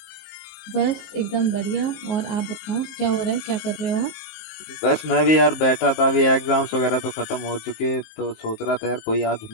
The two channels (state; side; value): late; right; 19 ms